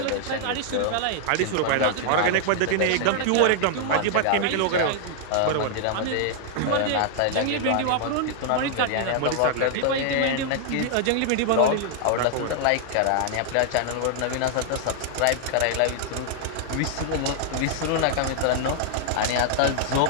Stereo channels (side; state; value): both; different; correlation 0.00